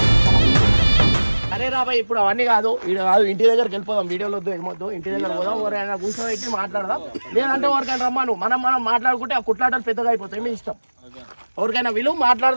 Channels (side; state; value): both; inverted; correlation -1.00